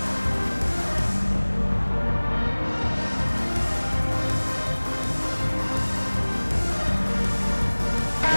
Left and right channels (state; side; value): inverted; both; correlation -1.00